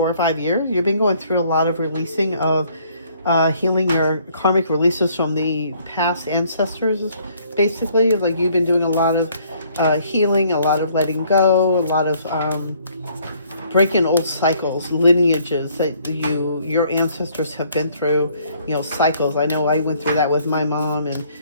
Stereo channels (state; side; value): inverted; both; correlation -0.63